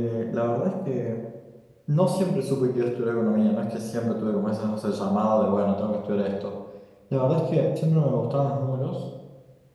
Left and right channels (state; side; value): identical; both; correlation 1.00